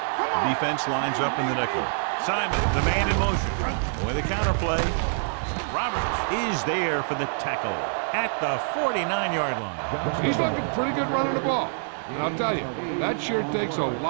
Come on. Defense lines up in the nickel. Simon, the man in motion. With a counterplay. Roberts is there for the tackle at the 49-yard line. He's looking pretty good running the ball. And I'll tell you, that sure takes a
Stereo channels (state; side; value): silent; left; 61 dB below the other